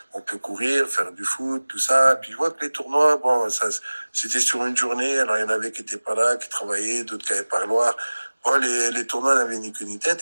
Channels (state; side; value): inverted; both; correlation -1.00